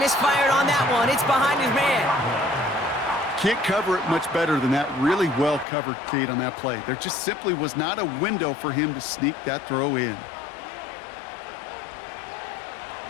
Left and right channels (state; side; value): drops out; right; at 5.7 s